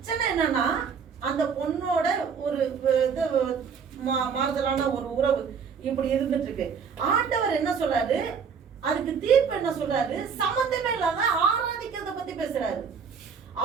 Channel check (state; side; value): quieter; left; 6.4 dB